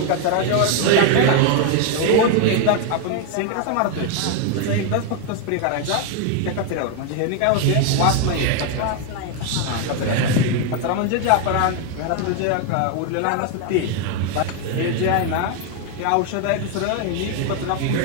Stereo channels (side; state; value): both; different; correlation 0.00